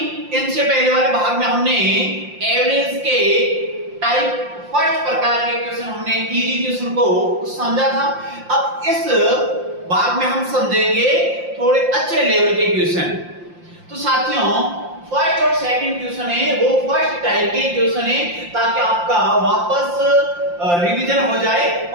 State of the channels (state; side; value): late; left; 5.7 ms